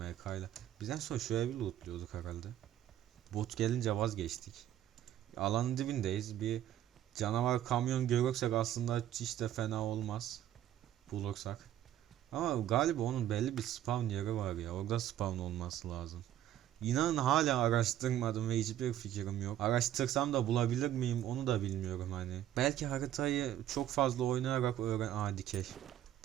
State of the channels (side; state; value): left; quieter; 12.0 dB